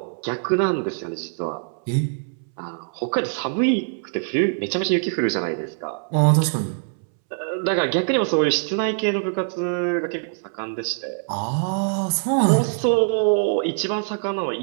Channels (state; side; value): silent; left; 63 dB below the other